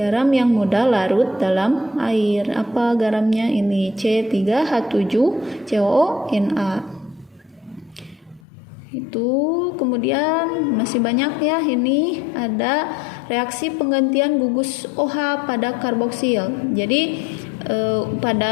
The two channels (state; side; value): drops out; right; at 8.4 s